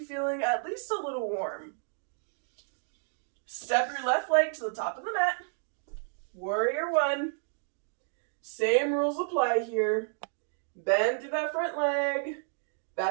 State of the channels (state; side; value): silent; left; digital silence